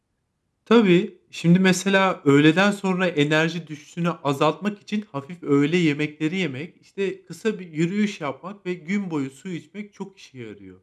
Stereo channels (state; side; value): identical; both; correlation 1.00